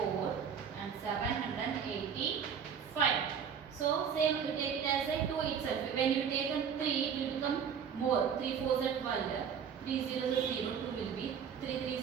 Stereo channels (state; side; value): quieter; left; 7.4 dB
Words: and 785. So same you take it as a 2 itself. When you take a 3 it will become more. 3 4s are 12, 3 0s are 0, 2 will be 3